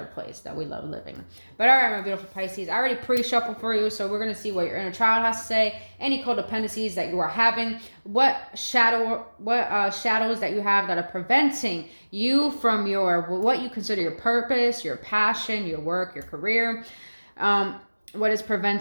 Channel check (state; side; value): inverted; both; correlation -1.00